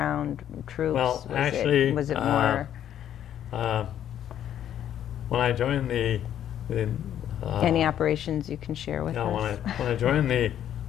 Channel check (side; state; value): right; quieter; 10.5 dB